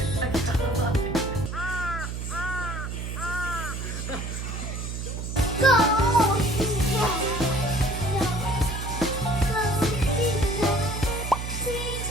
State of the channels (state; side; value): noise; right; hum, 5 dB below the sound